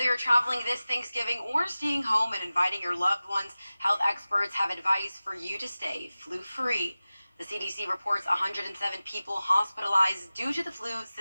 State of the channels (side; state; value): both; inverted; correlation -0.96